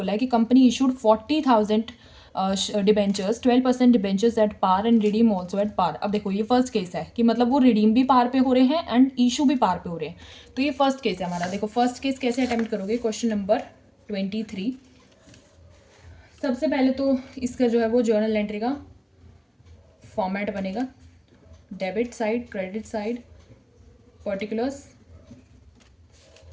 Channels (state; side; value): identical; both; correlation 1.00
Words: है कि company issued 40,000 debentures, 12% debentures at par and redeem also at par. अब देखो ये फर्स्ट केस है कि मतलब वो रिडीम भी पार पे हो रहे हैं एंड इशू भी पार पे हो रहे हैं। तो ये फर्स्ट केस है हमारा। देखो फर्स्ट केस कैसे अटेम्प्ट करोगे। क्वेश्चन नंबर 23, सबसे पहले तो इसका जो है वो जर्नल एंट्री का फॉर्मेट बनेगा। Debit side, credit side, particulars,